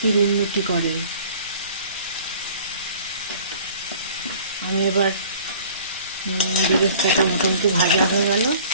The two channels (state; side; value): inverted; both; correlation -0.49